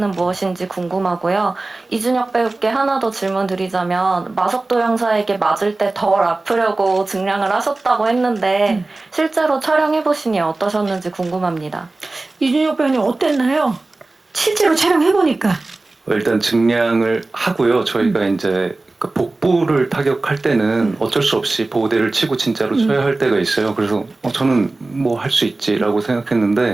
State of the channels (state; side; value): quieter; left; 3.2 dB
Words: 무엇인지 궁금하고요. 이준혁 배우께 하나 더 질문 드리자면 마석도 형사에게 맞을 때 덜 아프려고 증량을 하셨다고 했는데 실제로 촬영해보시니 어떠셨는지 궁금합니다. 이준혁 배우님 어땠나요? 실제로 촬영해보니까. 일단 증량을 하고요. 저희가 이제 그 복부를 타격할 때는 어쩔 수 없이 보호대를 치고 진짜로 쳐야 할 때가 있어요. 그래서 저는 뭐 할 수 있지라고